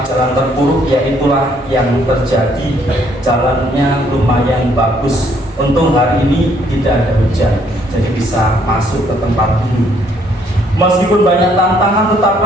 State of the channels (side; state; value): both; normal; correlation 0.67